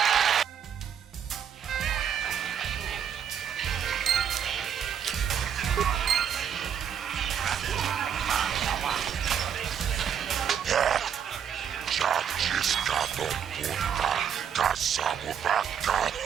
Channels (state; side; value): quieter; left; 8.3 dB